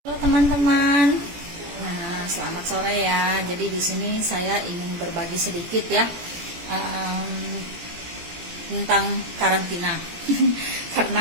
Halo teman-teman. Nah, selamat sore ya. Jadi di sini saya ingin berbagi sedikit ya tentang karantina.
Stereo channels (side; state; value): left; late; 18 ms